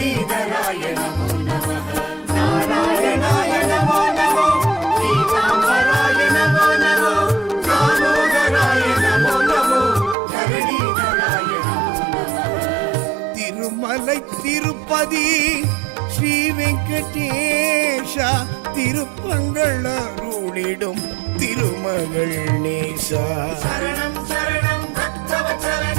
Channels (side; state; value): left; drops out; at 10.2 s